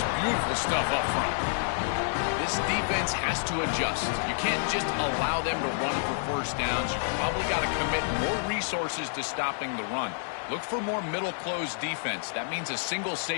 beautiful stuff up front. This defense has to adjust. You can't just allow them to run for first downs. You've probably got to commit more resources to stopping the run. Look for more middle closed defense. That means a single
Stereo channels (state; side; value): silent; right; 59 dB below the other